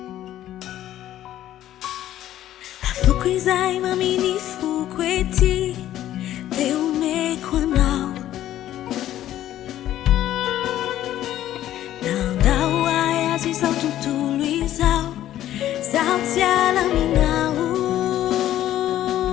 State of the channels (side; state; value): right; quieter; 12.7 dB